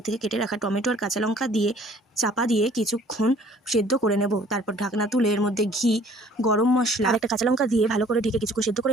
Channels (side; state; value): both; normal; correlation 0.55